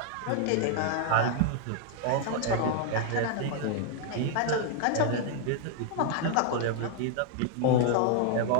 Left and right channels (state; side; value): different; both; correlation 0.00